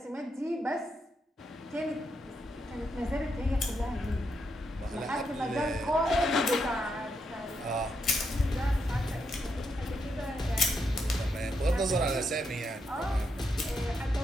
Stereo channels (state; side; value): normal; both; correlation 0.81